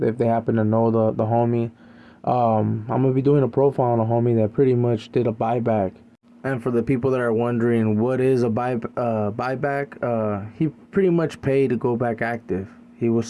they happen to know the homie. I'm gonna be doing a profile on a homie that pretty much did a buyback. And for the people that are wondering what is a buyback, he pretty much paid to go back active. He was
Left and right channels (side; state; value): both; identical; correlation 1.00